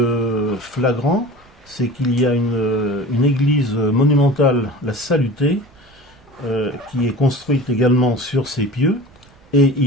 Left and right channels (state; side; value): noise; right; rumble, 28 dB below the sound